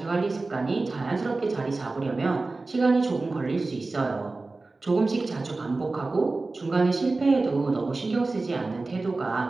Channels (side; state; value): left; quieter; 3.4 dB